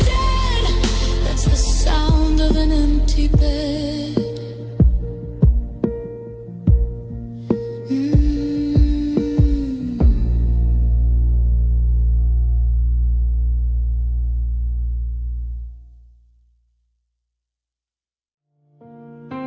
That's the sound of an empty bed.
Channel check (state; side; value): identical; both; correlation 1.00